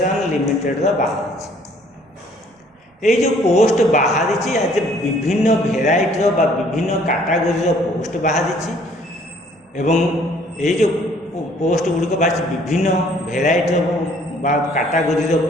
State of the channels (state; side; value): normal; both; correlation 0.59